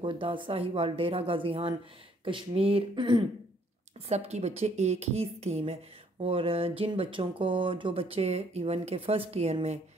साहिवाल, डेरा गाजी खान, कश्मीर सब की बच्चे एक ही स्कीम है। और जिन बच्चों को जो बच्चे इवन के फर्स्ट ईयर में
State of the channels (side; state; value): both; normal; correlation 0.65